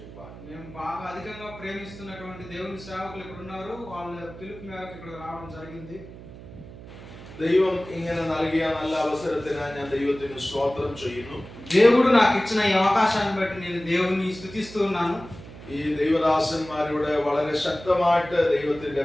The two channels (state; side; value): noise; right; hum, 16 dB below the sound